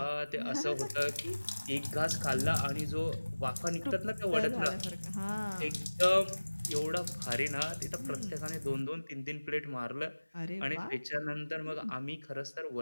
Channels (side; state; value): both; inverted; correlation -1.00